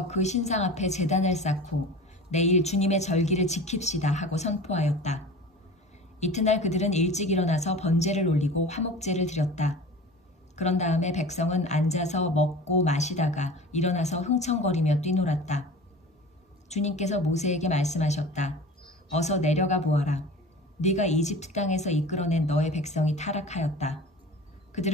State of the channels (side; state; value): both; normal; correlation 0.37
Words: 그 신상 앞에 제단을 쌓고 내일 주님의 절기를 지킵시다 하고 선포하였다. 이튿날 그들은 일찍 일어나서 번제를 올리고 화목제를 드렸다. 그런 다음에 백성은 앉아서 먹고 마시다가 일어나서 흥청거리며 뛰놀았다. 주님께서 모세에게 말씀하셨다. 어서 내려가 보아라. 네가 이집트 땅에서 이끌어낸 너의 백성이 타락하였다.